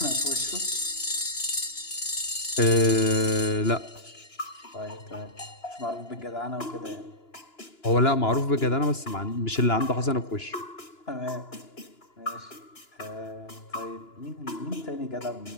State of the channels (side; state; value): right; late; 2.9 ms